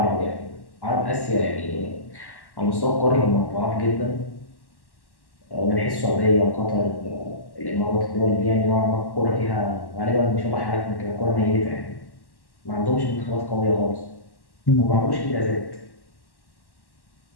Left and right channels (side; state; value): right; late; 1.1 ms